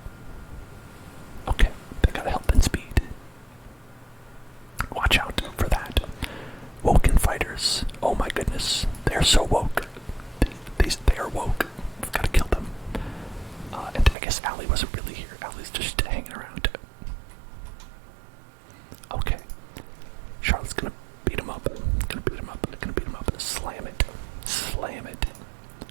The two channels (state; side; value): drops out; left; at 14.2 s